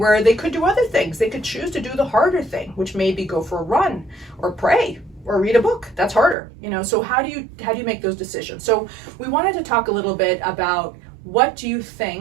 they could do other things. They could choose to do the harder thing, which may be go for a run or pray or read a book. That's harder, so how do you make those decisions? So we wanted to talk a little bit about what do you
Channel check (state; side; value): drops out; left; at 6.4 s